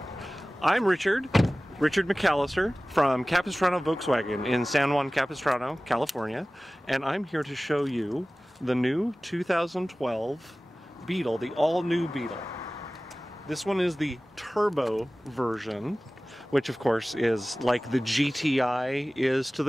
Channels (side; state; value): both; normal; correlation 0.97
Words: I'm Richard McAllister from Capistrano Volkswagen in San Juan Capistrano, California, and I'm here to show you the new 2012 Beetle, the all-new Beetle. This one is the turbo version, which of course is like the GTI is to